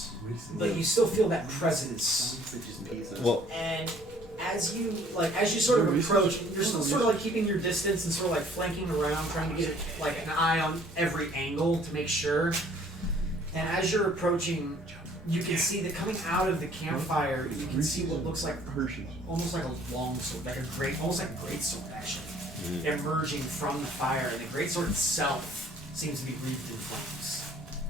but you still feel that presence. Well, And as you sort of approach, you're still sort of like keeping your distance and sort of like flanking around, trying to get like an eye on every angle to make sure. And as you're approaching, you can see that coming out of the campfire, you can see what looks like almost like a long sword, almost like a great sword actually, emerging from the fire, and the great sword itself seems to be wreathed in flames.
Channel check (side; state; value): both; normal; correlation 0.57